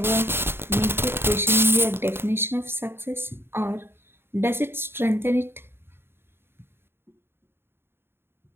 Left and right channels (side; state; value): left; late; 0.11 ms